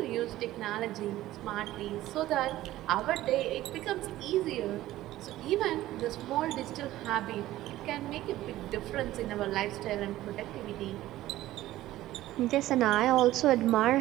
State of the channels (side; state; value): left; quieter; 15.3 dB